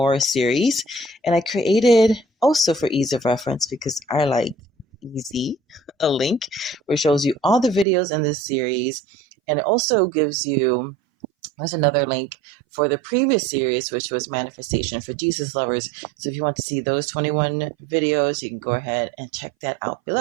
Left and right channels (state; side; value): drops out; left; at 7.9 s